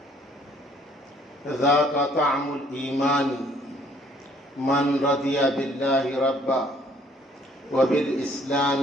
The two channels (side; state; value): both; normal; correlation 0.61